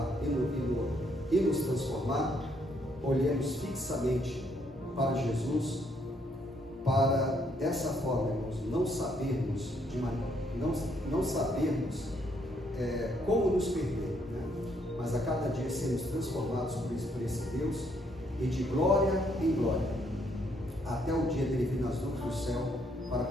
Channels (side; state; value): both; normal; correlation 0.71